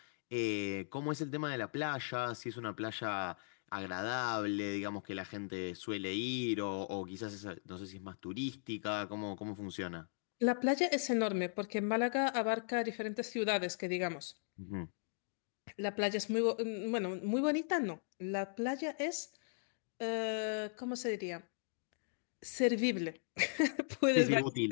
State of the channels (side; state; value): right; silent; digital silence